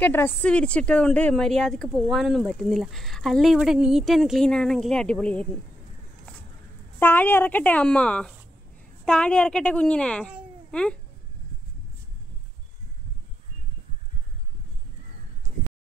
ഡ്രസ്സ് വിരിച്ചിട്ടത് കൊണ്ട് മര്യാദക്ക് പോകാനൊന്നും പറ്റുന്നില്ല. അല്ല ഇവിടെ നീറ്റ് ആൻഡ് ക്ലീൻ ആണെങ്കിൽ അടിപൊളിയായിരുന്നു. താഴെ ഇറക്കട്ടെ അമ്മ, താഴെ ഇറക്കട്ടെ കുഞ്ഞിനെ.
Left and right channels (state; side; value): normal; both; correlation 0.81